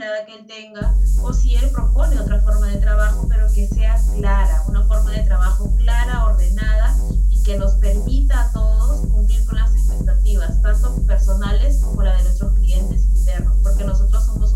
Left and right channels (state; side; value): identical; both; correlation 1.00